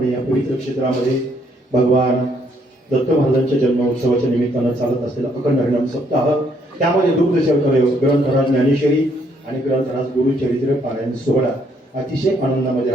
या पवित्र क्षेत्रामध्ये भगवान दत्त महाराजांच्या जन्मोत्सवाच्या निमित्तानं चालत असलेला अखंड हरिनाम सप्ताह त्यामध्ये दुग्ध शर्करा ग्रंथराज ज्ञानेश्वरी आणि ग्रंथराज गुरुचरित्र पारायण सोहळा अतिशय आनंदामध्ये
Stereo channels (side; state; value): both; normal; correlation 0.70